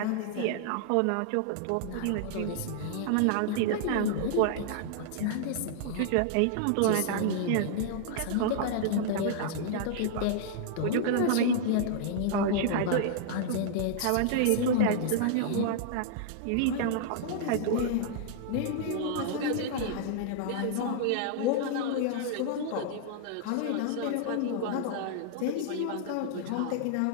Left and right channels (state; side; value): different; both; correlation -0.01